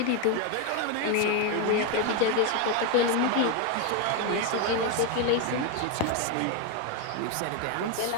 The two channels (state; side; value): different; both; correlation 0.02